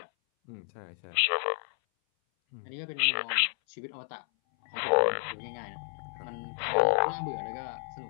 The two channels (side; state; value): right; silent; 57 dB below the other